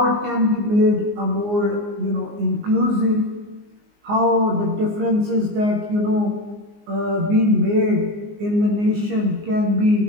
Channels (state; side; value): late; left; 19 ms